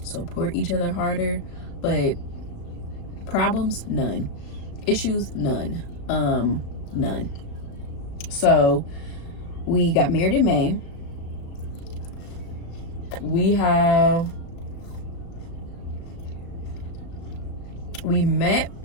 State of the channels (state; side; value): late; right; 35 ms